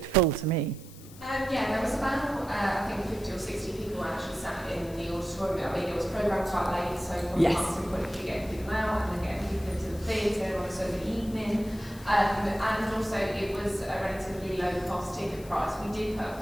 full to me. Yeah, there was about, I think 50 or 60 people actually sat in the auditorium. I mean, it was programmed quite late, so from yes. a marketing point of view, getting people out and then getting people into the theatre on a Sunday evening. And also it was a relatively low cost ticket price. We did put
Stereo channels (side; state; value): left; noise; hiss, 20 dB below the sound